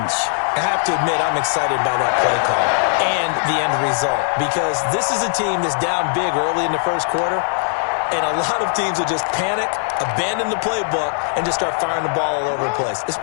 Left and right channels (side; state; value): right; silent; digital silence